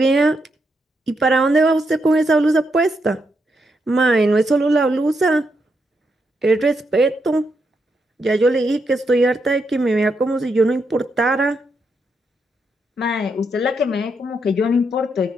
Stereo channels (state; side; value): normal; both; correlation 0.81